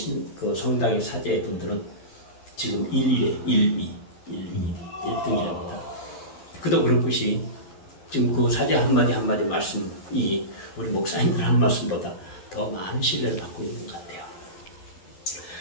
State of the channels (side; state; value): right; late; 11 ms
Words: 그 성당의 사제 분들은 지금 1등이랍니다. 그도 그럴 것이 지금 그 사제 한마디 한마디 말씀이 우리 목사님들 하는 말씀보다 더 많은 신뢰를 받고 있는 것 같아요.